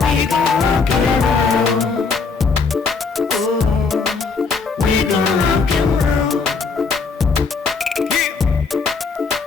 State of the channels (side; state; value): right; quieter; 4.7 dB